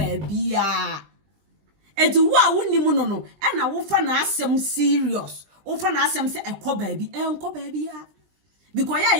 bia enti wo a wonimu no e na wo fa na asem serious wo fa na asem se enko ba bia because ya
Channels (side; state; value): left; late; 20 ms